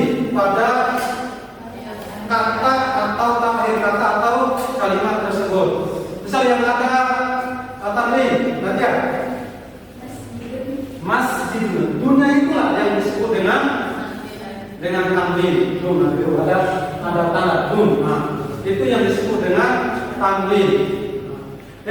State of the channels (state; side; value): identical; both; correlation 1.00